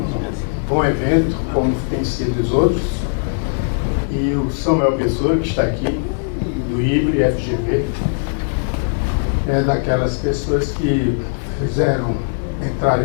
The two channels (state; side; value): silent; right; 67 dB below the other